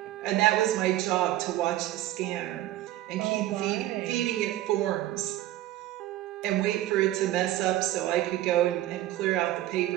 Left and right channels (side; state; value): left; quieter; 14.7 dB